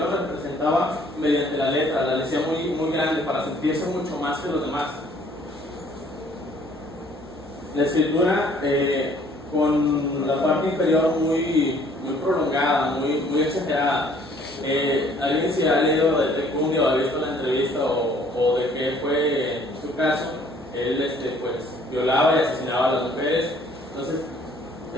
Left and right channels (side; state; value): both; normal; correlation 0.59